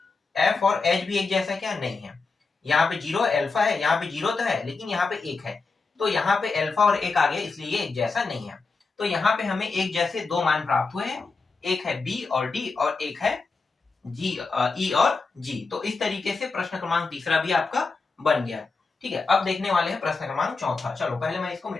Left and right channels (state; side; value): quieter; right; 4.2 dB